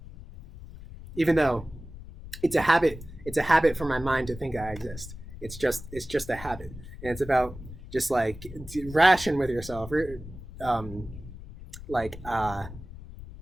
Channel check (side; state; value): left; noise; rumble, 14 dB below the sound